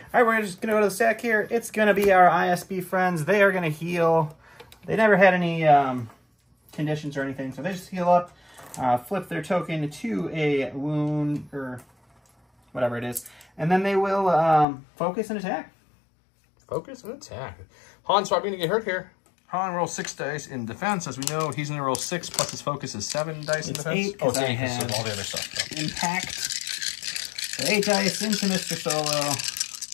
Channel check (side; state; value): right; drops out; at 14.7 s